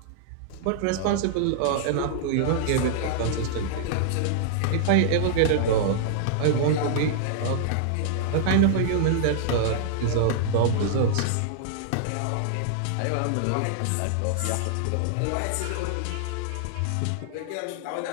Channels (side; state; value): both; different; correlation -0.01